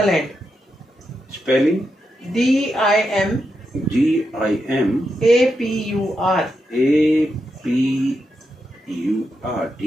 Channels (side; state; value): both; normal; correlation 0.85